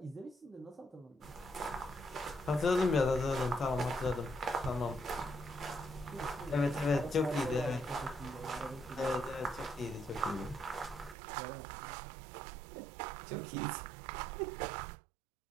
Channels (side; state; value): left; drops out; at 11.2 s